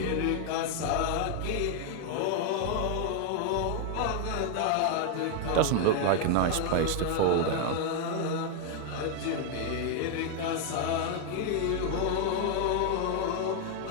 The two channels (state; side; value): different; both; correlation 0.00